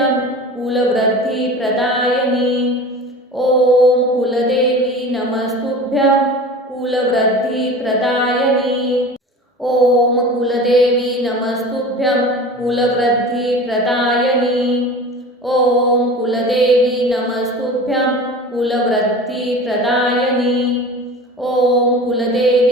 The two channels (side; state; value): both; normal; correlation 0.36